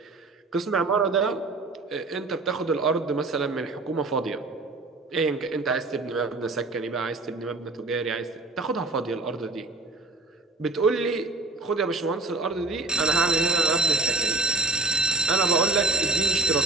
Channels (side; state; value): left; quieter; 3.4 dB